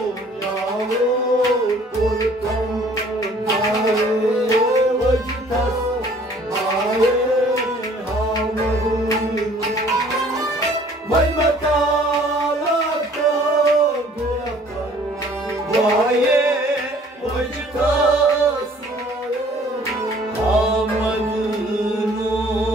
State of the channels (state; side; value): normal; both; correlation 0.55